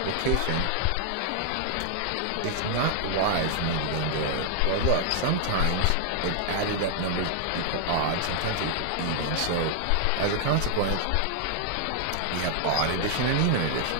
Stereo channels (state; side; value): different; both; correlation 0.00